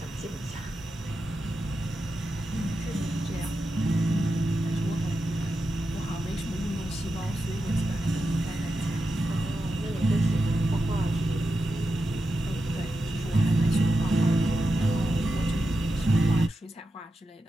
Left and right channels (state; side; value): normal; both; correlation 0.89